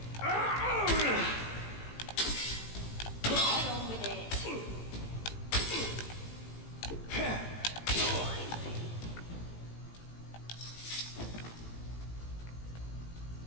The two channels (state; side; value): late; right; 18 ms